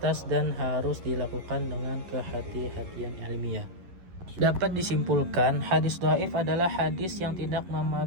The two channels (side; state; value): left; late; 11 ms